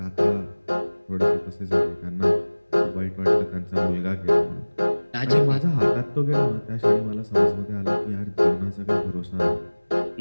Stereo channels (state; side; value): inverted; both; correlation -1.00